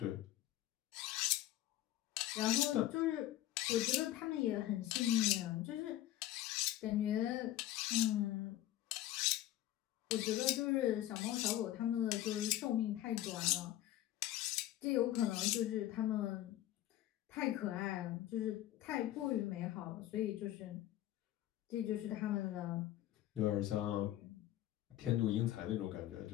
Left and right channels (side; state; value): right; quieter; 13.9 dB